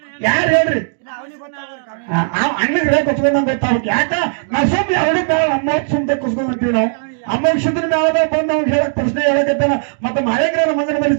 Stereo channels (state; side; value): silent; left; digital silence